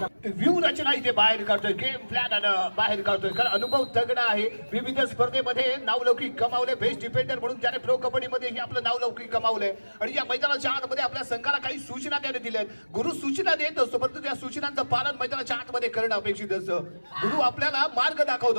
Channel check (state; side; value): inverted; both; correlation -1.00